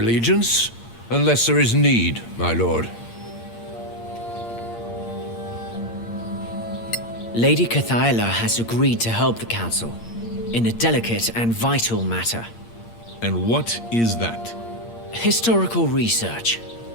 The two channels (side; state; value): right; late; 8.7 ms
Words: unless there is need, my lord. Lady Cathaela has agreed to help the Council in a delicate and vital matter. And what is that? Historical research.